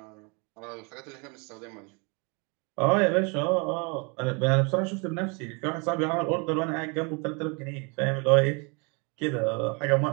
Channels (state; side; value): quieter; left; 32.2 dB